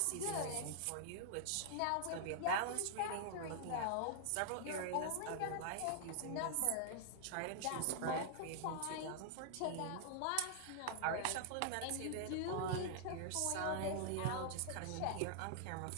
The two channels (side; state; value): both; different; correlation -0.01